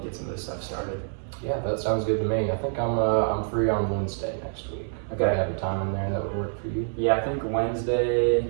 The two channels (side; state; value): left; silent; 60 dB below the other